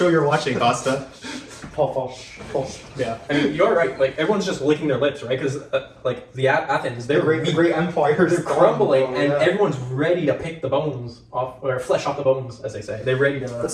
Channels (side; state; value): both; identical; correlation 1.00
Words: you're watching, Costa. Paul. Yeah, I mean, you're right. Like, everyone's just licking their lips, right? Because like the Athens, they're The great empire, they're crumbling, and yeah. everyone's ready to pick the bones off, or flesh off the bones, as they say. They're ready to. Let's